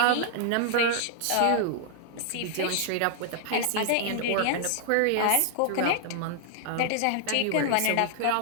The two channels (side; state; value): both; different; correlation -0.01